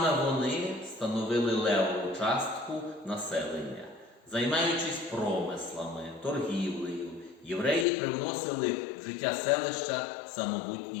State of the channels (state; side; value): drops out; right; at 7.9 s